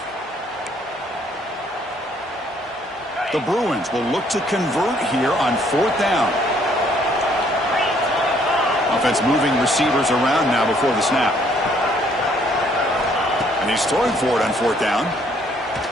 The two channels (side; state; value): both; normal; correlation 0.65